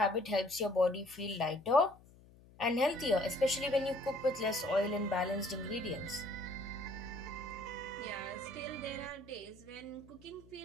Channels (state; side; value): noise; left; hum, 24 dB below the sound